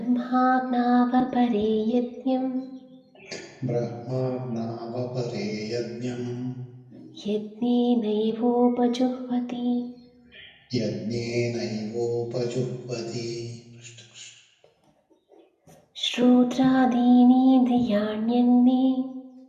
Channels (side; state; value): both; identical; correlation 1.00